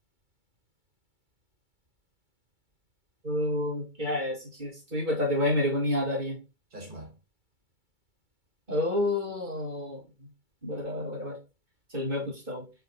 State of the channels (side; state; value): left; late; 2.3 ms